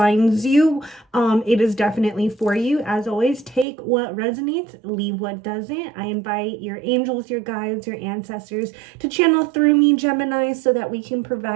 you, it is definitely for you. As always, take what resonates, leave what doesn't. I invite your angels, your guides, your ancestors to channel through me, Gemini, so that we can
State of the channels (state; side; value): drops out; left; at 3.7 s